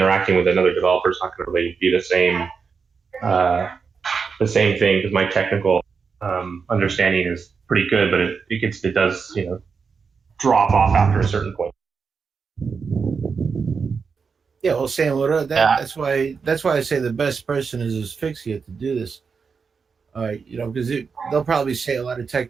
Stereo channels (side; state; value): left; quieter; 5.5 dB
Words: with another developer is not going to really be the same thing, because my technical understanding is pretty good, but it does drop off after a certain point. Yeah, well, Sam, that's why I say the best person is Asphyxia to do this. Because they'll probably say a lot of